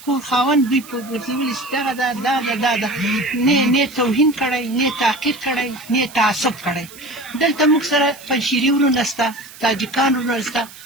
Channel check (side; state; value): right; noise; hiss, 18 dB below the sound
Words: کور خاوند دوی په ګرځولي چې دغه ده نه توهین کړی، نه تحقیر کړی، نه تعصب کړی. دلته موږ سره پنجشیري ورونه شته، تاجکان ورونه شته،